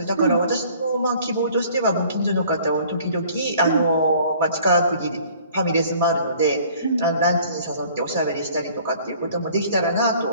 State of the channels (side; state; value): both; inverted; correlation -0.53